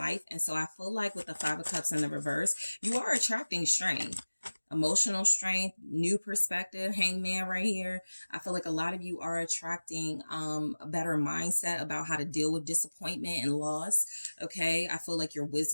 And so I feel like with the 5 of Cups in the reverse, you are attracting strength. Emotional strength, new perspective, Hangman right here. I feel like a lot of you are attracting a better mindset about how to deal with disappointment and loss. Okay. I feel like your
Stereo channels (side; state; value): both; inverted; correlation -1.00